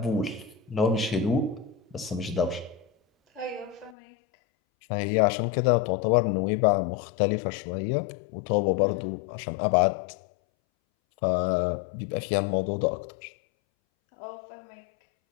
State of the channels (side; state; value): right; drops out; at 4.0 s